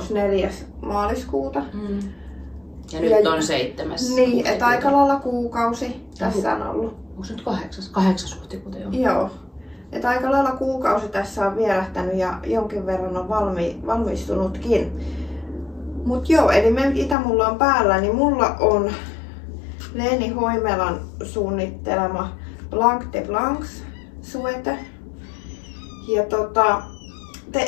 4. maaliskuuta. Ja nyt on 7. Niin, että aika lailla kuukausi tässä on ollut. Onko se nyt 8. huhtikuuta jo? Joo. Että aika lailla kuukausi tässä on vierähtänyt ja jonkin verran on valmistunutkin. Mut joo, eli mitä mulla on päällä, niin mulla on Leeni Hoimelan suunnittelema Blanc de Blancs suete. Ja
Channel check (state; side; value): drops out; right; at 17.2 s